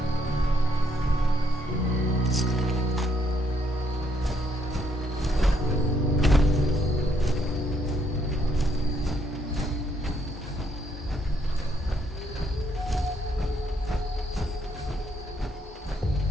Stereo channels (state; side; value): normal; both; correlation 0.72